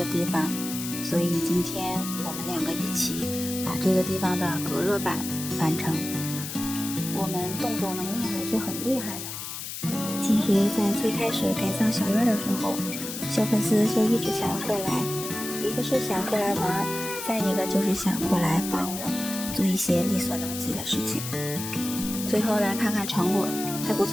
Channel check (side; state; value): left; noise; hiss, 7 dB below the sound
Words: 地方，所以今天我们2个一起把这个地方的隔热板完成。我们动手能力还是很厉害的。其实在最开始改造小院的时候，小粉丝就一直想要过来，一个是想过来玩，再一个就是想过来帮我做一些力所能及的事情。最后来看看成果，还不